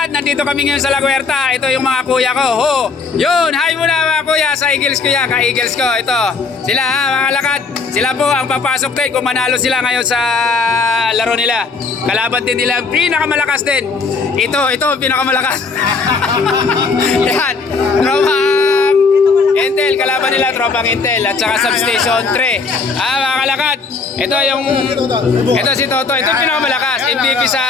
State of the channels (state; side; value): quieter; right; 4.5 dB